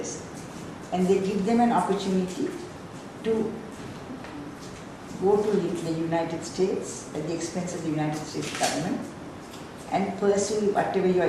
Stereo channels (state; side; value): identical; both; correlation 1.00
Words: and they give them an opportunity to go to the United States at the expense of the United States government and pursue whatever your